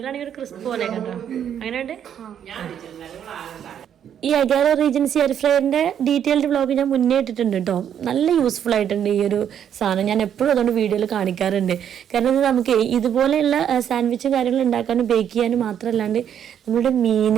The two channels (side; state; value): left; quieter; 9.2 dB